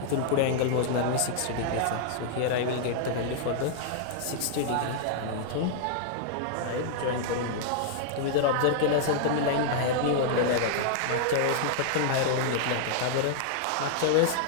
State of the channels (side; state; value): both; different; correlation -0.01